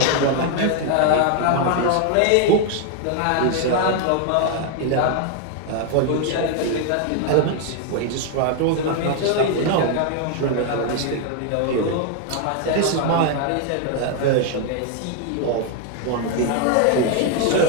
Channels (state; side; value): different; both; correlation 0.01